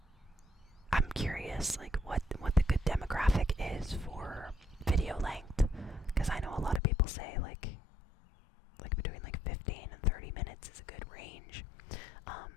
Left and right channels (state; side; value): drops out; right; at 6.8 s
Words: I'm curious, like what the good demographic is for video length, because I know a lot of people say like between like 15 and 30 minutes is a good range,